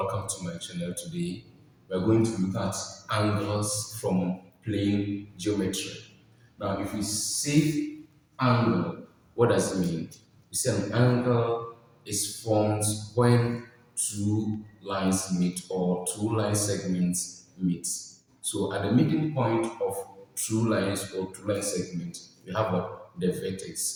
to my channel today. We are going to look at angles from plane geometry. Now, if we say angle, what does it mean? We say an angle is formed when two lines meet or two line segments meet. So, at the meeting point of two lines or two line segments, we have what? The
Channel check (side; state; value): both; identical; correlation 1.00